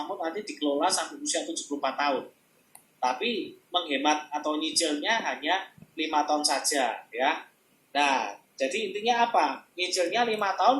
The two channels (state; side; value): identical; both; correlation 1.00